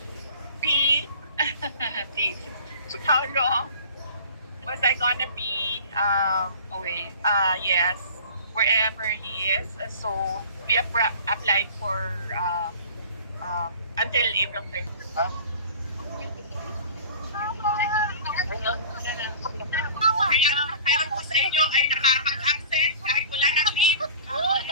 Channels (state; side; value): inverted; both; correlation -0.43